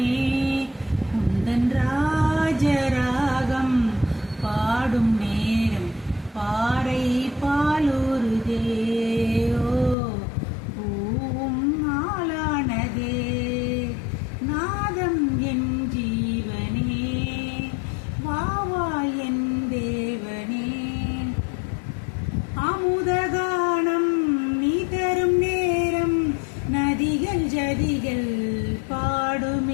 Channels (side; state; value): right; drops out; at 10.0 s